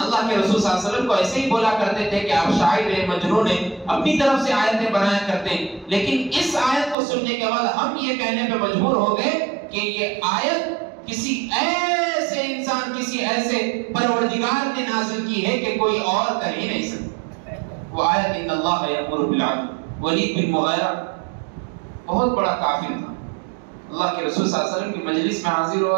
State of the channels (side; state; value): left; drops out; at 7.0 s